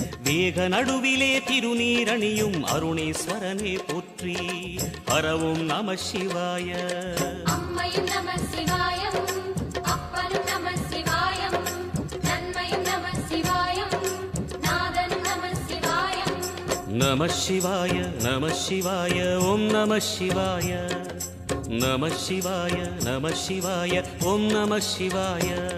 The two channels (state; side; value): identical; both; correlation 1.00